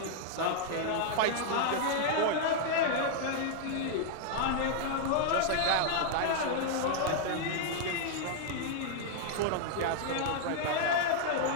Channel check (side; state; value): both; different; correlation -0.01